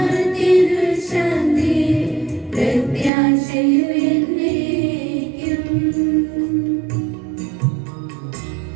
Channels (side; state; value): left; drops out; at 3.1 s